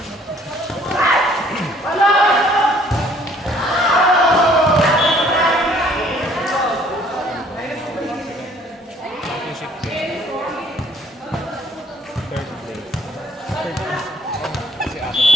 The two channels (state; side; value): normal; both; correlation 0.59